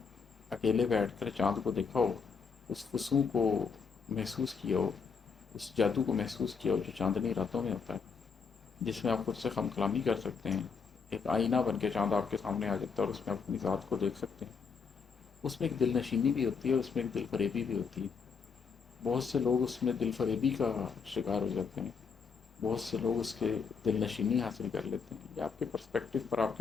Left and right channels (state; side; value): quieter; right; 5.6 dB